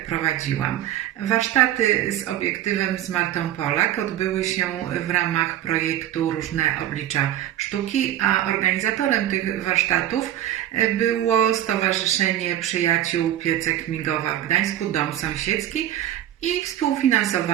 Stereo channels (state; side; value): quieter; left; 12.4 dB